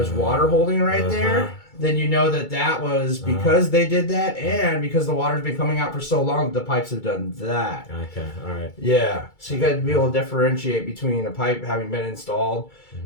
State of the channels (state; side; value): late; right; 2.3 ms